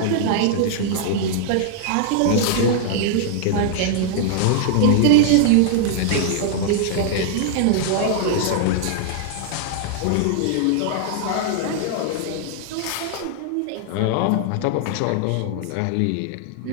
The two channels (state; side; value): different; both; correlation 0.00